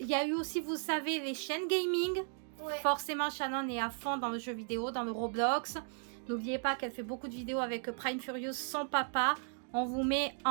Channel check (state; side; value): silent; left; 54 dB below the other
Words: y a eu aussi, vous savez, les chaînes gaming. Ouais. Forcément, Shannon est à fond dans le jeu vidéo, dans le Roblox. N'oubliez pas qu'elle fait beaucoup de vidéos avec Prime Furious, son papa. On vous met